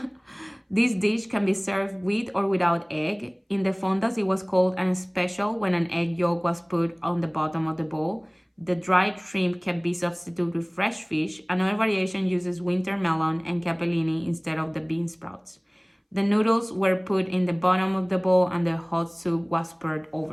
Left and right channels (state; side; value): identical; both; correlation 1.00